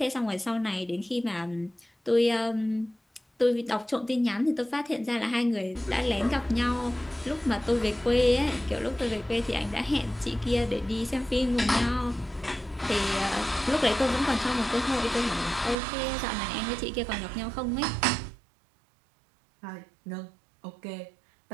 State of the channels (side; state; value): left; drops out; at 15.8 s